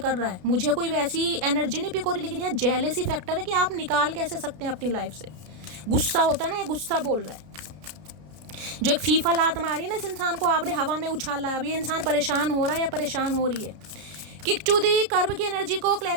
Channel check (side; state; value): left; late; 32 ms